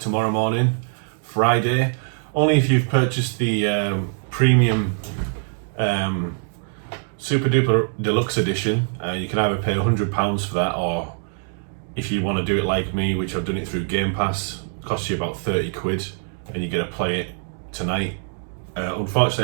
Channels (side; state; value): left; silent; 63 dB below the other